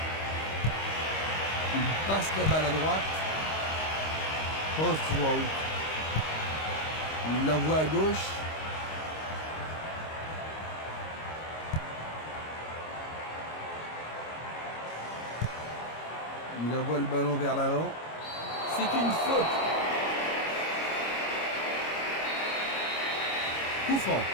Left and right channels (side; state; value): right; late; 25 ms